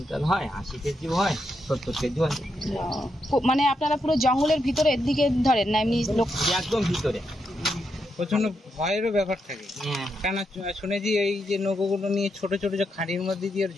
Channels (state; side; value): normal; both; correlation 0.82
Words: হয়, 80 কেজি হয়, 70 কেজি হয়। মানে আপনারা পুরো জঙ্গলের ভিতরে এর দিকে ধরেন না এমনি লোক? একদম ভিতরে। প্রচন্ড ভয়েরও ব্যাপার থাকে, কেন শুনেছি এই যে নৌকোগুলো নিয়ে ছোট ছোট যে খাঁড়ির মধ্যে দিয়ে